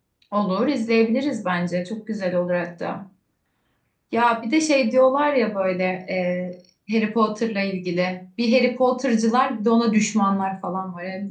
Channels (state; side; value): identical; both; correlation 1.00